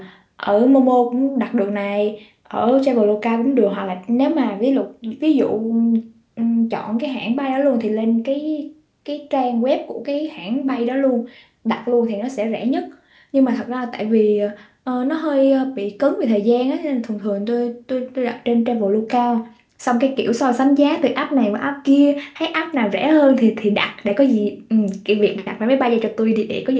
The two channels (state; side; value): identical; both; correlation 1.00